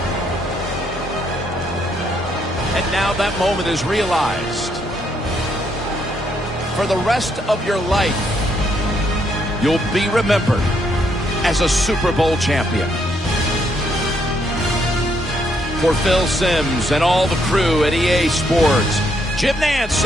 And now that moment is realized. For the rest of your life, you'll be remembered as a Super Bowl champion. For Phil Simms and all the crew at EA Sports, Jim Nantz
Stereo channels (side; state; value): both; normal; correlation 0.74